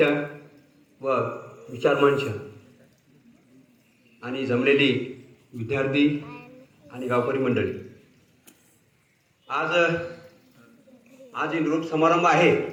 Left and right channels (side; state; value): both; identical; correlation 1.00